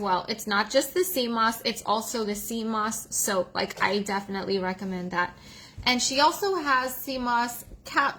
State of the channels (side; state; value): both; identical; correlation 1.00